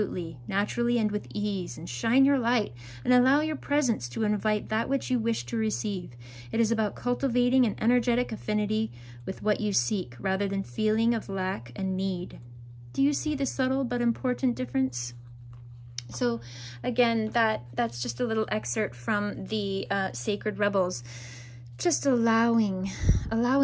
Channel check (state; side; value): identical; both; correlation 1.00